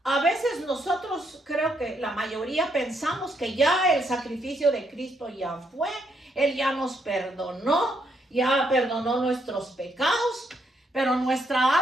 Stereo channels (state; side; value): normal; both; correlation 0.75